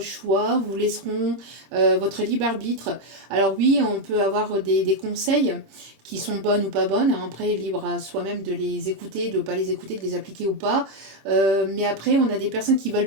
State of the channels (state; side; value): late; left; 26 ms